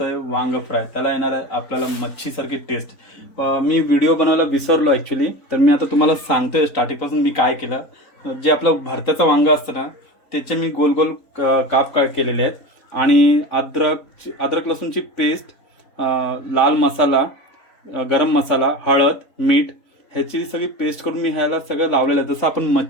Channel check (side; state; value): right; late; 3.8 ms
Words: वांग फ्राय. त्याला येणार आहे आपल्याला मच्छीसारखी टेस्ट. मी व्हिडिओ बनवायला विसरलो ॲक्च्युली, तर मी आता तुम्हाला सांगतोय स्टार्टिंगपासून मी काय केलं. जे आपलं भरत्याचं वांग असतं ना, त्याचे मी गोल गोल काप केलेले आहेत आणि अद्रक लसूणची पेस्ट, लाल मसाला, गरम मसाला, हळद, मीठ ह्याची सगळी पेस्ट करून मी ह्याला सगळं लावलेलं आहे. जसं आपण